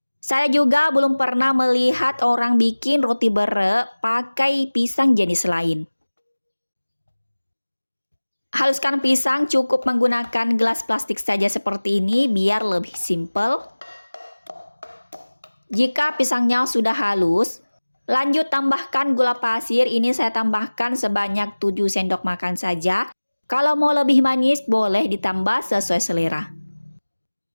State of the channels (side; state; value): both; inverted; correlation -1.00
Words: Saya juga belum pernah melihat orang bikin roti bere pakai pisang jenis lain. Haluskan pisang cukup menggunakan gelas plastik saja seperti ini biar lebih simple. Jika pisangnya sudah halus, lanjut tambahkan gula pasir. Ini saya tambahkan sebanyak 7 sendok makan saja. Kalau mau lebih manis boleh ditambah sesuai selera.